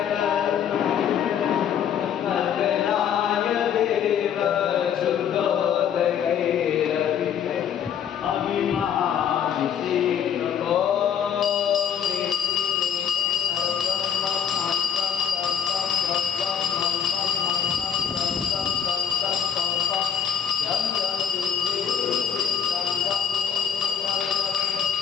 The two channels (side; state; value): right; quieter; 8.4 dB